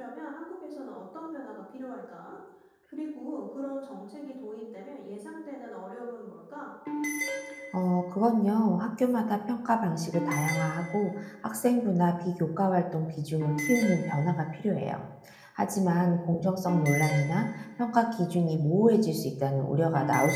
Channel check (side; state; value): both; identical; correlation 1.00